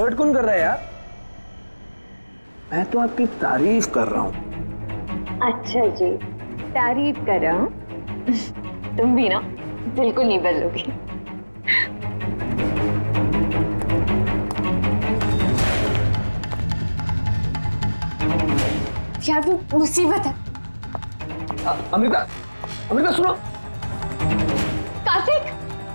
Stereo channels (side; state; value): both; inverted; correlation -1.00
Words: कौन कर रहा है यार? मैं तो आपकी तारीफ कर रहा हूँ। अच्छा जी, तारीफ कर रहा हूँ। तुम भी ना बिल्कुल नहीं बदलोगी। यार वो मुसीबत है। अमृता, अमृता सुनो। कार्तिक,